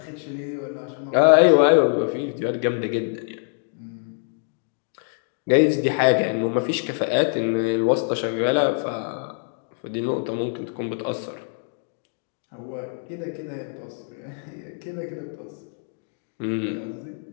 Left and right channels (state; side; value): silent; right; digital silence